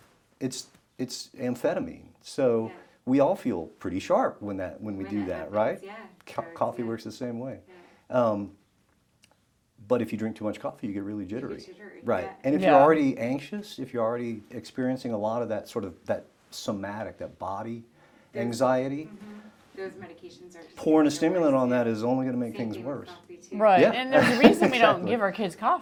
it's amphetamine. So we all feel pretty sharp when we do that, right? Coffee works the same way. But if you drink too much coffee, you get really jittery. Right. And if you're already anxious, if you're already experiencing a lot of that sort of that somatic, that body anxiety, those medications are just pouring a stimulant on that is only going to make things worse. Right. Yeah. And there's a reason we don't Exactly. give our kids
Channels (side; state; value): both; identical; correlation 1.00